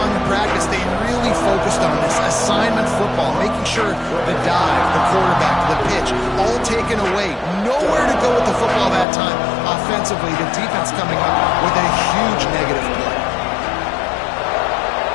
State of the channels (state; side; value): drops out; right; at 9.1 s